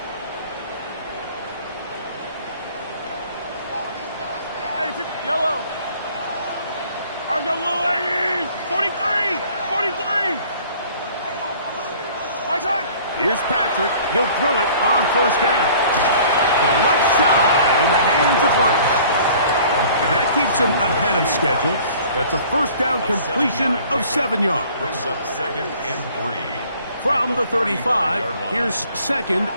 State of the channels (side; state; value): both; inverted; correlation -0.52